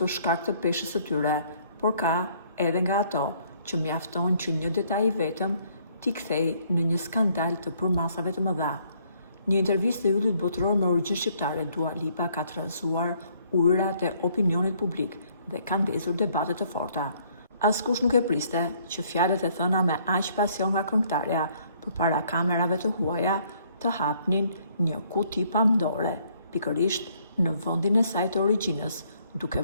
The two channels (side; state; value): both; inverted; correlation -0.65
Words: shkak të peshës së tyre, por ka edhe nga ato që mjafton që një detaj i vetëm t'i kthej në një skandal të përmasave të mëdha. Një intervistë e yllit botror me origjinë shqiptare, Dua Lipa ka trazuar ujërat e opinionit publik dhe ka ndezur debate të forta. Askush nuk e priste që fjalët e thëna me aq pasion nga këngëtarja përpara kamerave të huaja të hapnin një kuti pamdore, pikërisht në vendin e saj të origjinës, duke